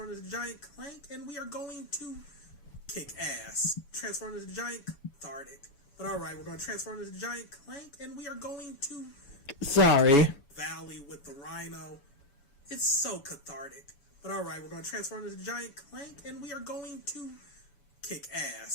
into the giant Clank, and we are going to kick ass. Transform into the giant cathartic. But alright, we're going to transform into the giant Clank, and we are going to... Sorry. Valley with the Rhino. It's so cathartic. But alright, we're going to transform into the giant Clank, and we are going to kick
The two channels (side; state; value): right; late; 7.1 ms